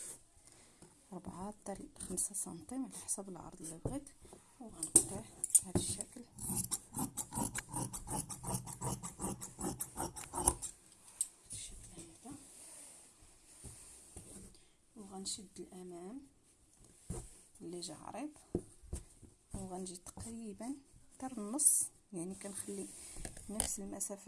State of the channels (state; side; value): identical; both; correlation 1.00